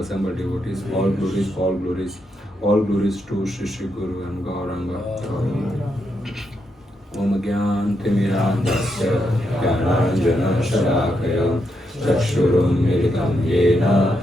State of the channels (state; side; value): normal; both; correlation 0.81